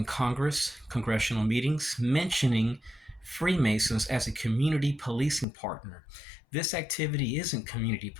Congress, congressional meetings, mentioning Freemasons as a community policing partner. This activity isn't community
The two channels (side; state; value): right; drops out; at 5.5 s